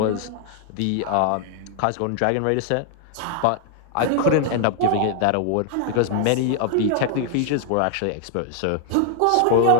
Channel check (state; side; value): different; both; correlation 0.00